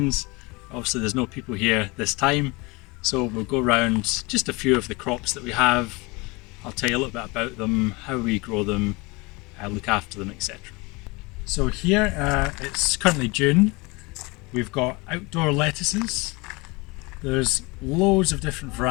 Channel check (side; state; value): right; quieter; 25.6 dB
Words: Obviously there's no people here this time, so we'll go around just a few of the crops that we have. I'll tell you a little bit about them, how we grow them, look after them, etc. So here it's currently June. We've got outdoor lettuces. There's loads of different